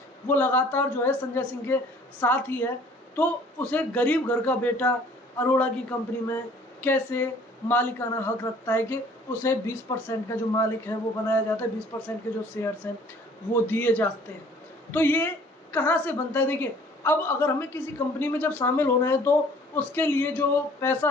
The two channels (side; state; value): both; normal; correlation 0.54